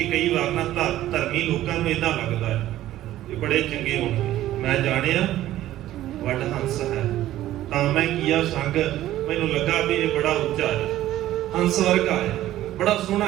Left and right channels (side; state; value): left; quieter; 14.0 dB